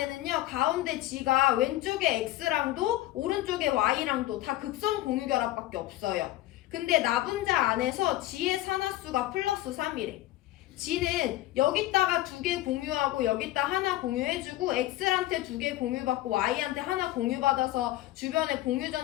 가운데 g가 왼쪽에 x랑도 오른쪽에 y랑도 다 극성 공유결합밖에 없어요. 근데 나분자 안에서 g의 산화수가 플러스 3이래. g는 여기다가 2개 공유하고 여기다 하나 공유해주고 x한테 2개 공유받고 y한테 하나 공유받아서 주변에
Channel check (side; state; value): right; quieter; 15.8 dB